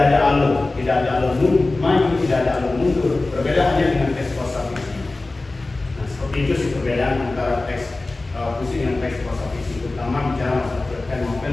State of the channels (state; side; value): quieter; right; 3.2 dB